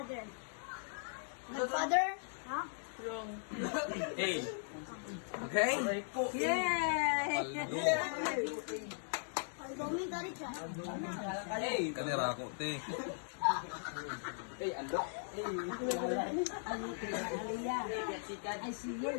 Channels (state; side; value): silent; right; digital silence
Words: Godfather? Ha? Wrong. Hey. Okay? Yay! Domin dari siya. Hey. Kanira ako, te. Hey, ando. Aliyah. Ay, sige